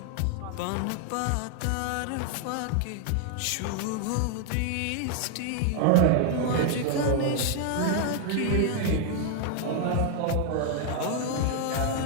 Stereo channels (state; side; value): different; both; correlation 0.00